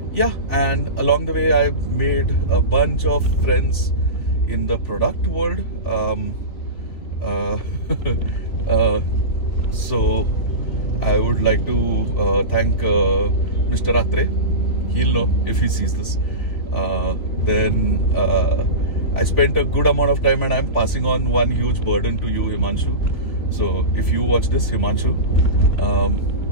Yeah, and along the way I've made a bunch of friends in the product world. So I would like to thank Mr. Atre. He'll know if he sees this. Then I spent a good amount of time, and I'm passing on one huge burden to you, Himanshu. So if you watch this, Himanshu,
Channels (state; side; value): late; right; 3.8 ms